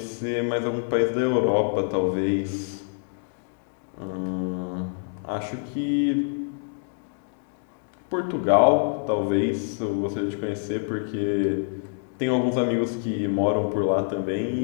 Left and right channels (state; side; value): silent; right; 61 dB below the other